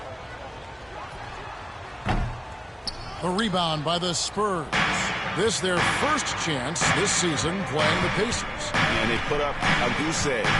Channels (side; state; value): both; identical; correlation 1.00